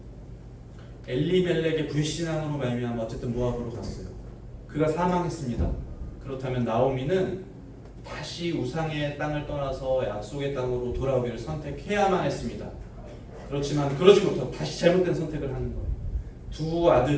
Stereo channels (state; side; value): identical; both; correlation 1.00